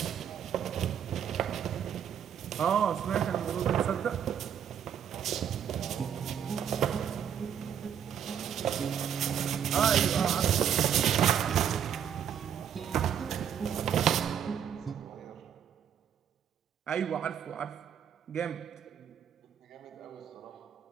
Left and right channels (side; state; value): left; quieter; 8.7 dB